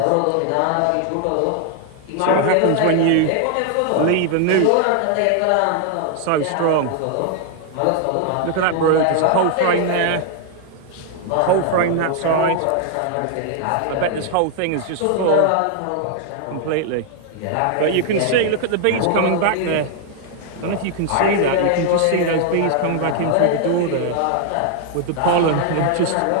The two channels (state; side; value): different; both; correlation 0.00